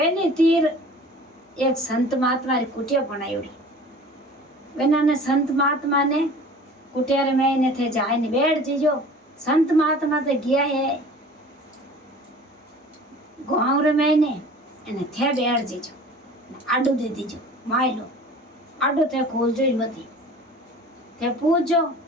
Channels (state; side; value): normal; both; correlation 0.44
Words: तीर एक संत महात्मा री कुटिया बनायोड़ी वेना संत महात्मा ने कुटिया रे में ने थे जाए ने बैठ जीजो संत महात्मा तो गया है गाँव रे में ने એને થે બેઠ જીજો આડું દે દીજો માયલો આડું તે ખોલજો જ મતી તે પૂછજો